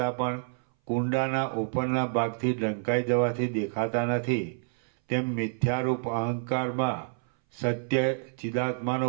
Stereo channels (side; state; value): left; silent; 58 dB below the other